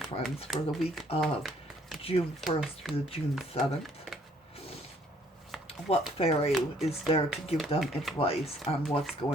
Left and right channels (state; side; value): normal; both; correlation 0.63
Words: for the week of June 1st through June 7th? What fairy is there to give them advice on what's